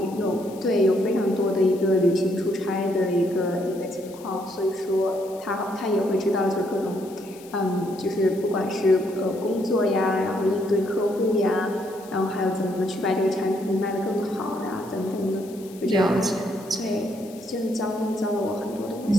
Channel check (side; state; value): left; noise; hiss, 22 dB below the sound